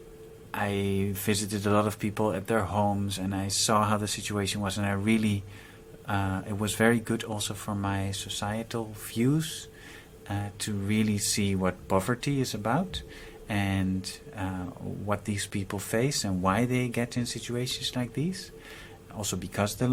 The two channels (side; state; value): both; identical; correlation 1.00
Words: I visited a lot of people at their homes, and I saw how the situation was, and I really, it was very good also for my societal views to really see what poverty is about, and what these people face and why they get in situations like these. Also because the